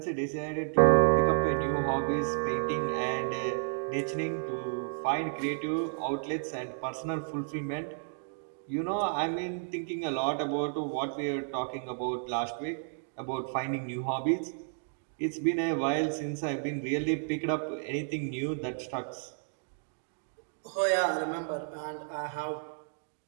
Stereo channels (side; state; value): left; silent; digital silence